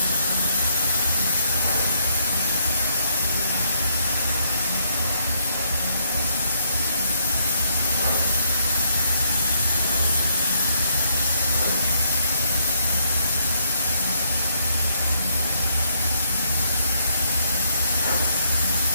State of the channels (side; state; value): both; inverted; correlation -0.72